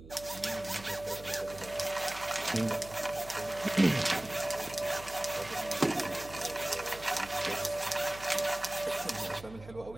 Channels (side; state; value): right; noise; hum, 17 dB below the sound